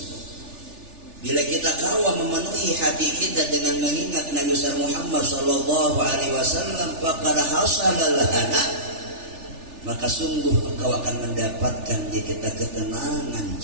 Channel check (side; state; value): left; late; 3.4 ms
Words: Bila kita kawa memenuhi hati kita dengan mengingat Nabi Muhammad sallallahu alaihi wasallam, faqad hasala lana, maka sungguh engkau akan mendapatkan di kita ketenangan